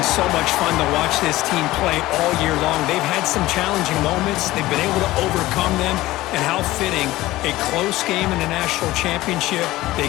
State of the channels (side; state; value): right; quieter; 17.4 dB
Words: so much fun to watch this team play all year long. They've had some challenging moments. They've been able to overcome them. And how fitting, a close game in the national championship. They